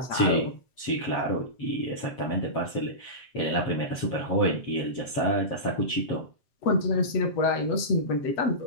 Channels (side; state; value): right; late; 7.6 ms